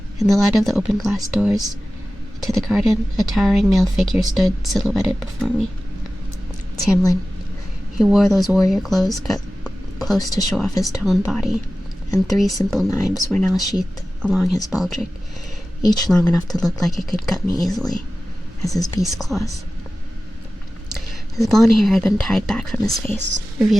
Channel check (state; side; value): normal; both; correlation 0.95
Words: In the light of the open glass doors to the garden, a towering male figure stood silhouetted before me. Tamlin. He wore those warrior clothes cut close to show off his toned body, and 3 simple knives were now sheathed along his baldric, each long enough to look like it could cut me easily, as his beast claws. His blonde hair had been tied back from his face,